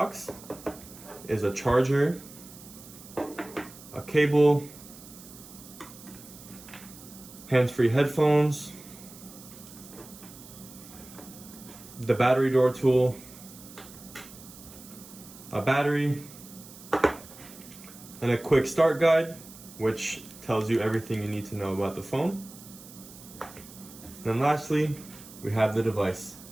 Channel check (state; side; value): noise; right; hiss, 18 dB below the sound